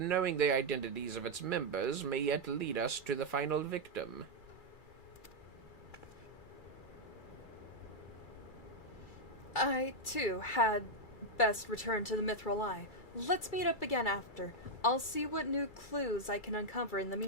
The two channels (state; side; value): late; right; 2.3 ms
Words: the identities of its members may yet lead us to the final victim. I, too, had best return to the Mithril Eye. Let's meet up again after. I'll see what new clues I can uncover in the